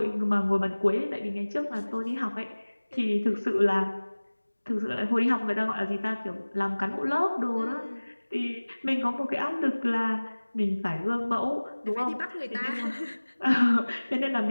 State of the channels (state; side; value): inverted; both; correlation -1.00